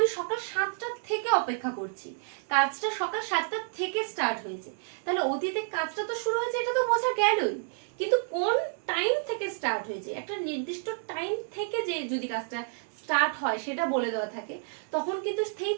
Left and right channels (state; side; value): silent; left; 58 dB below the other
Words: সকাল 7টা থেকে অপেক্ষা করছি, কাজটা সকাল 7টা থেকে স্টার্ট হয়েছে, তাহলে অতীতে কাজটা তো শুরু হয়েছে এটা তো বোঝা গেলই, কিন্তু কোন টাইম থেকে স্টার্ট হয়েছে, একটা নির্দিষ্ট টাইম থেকে যে যদি কাজটা স্টার্ট হয় সেটা বলে দেওয়া থাকে, তখন কিন্তু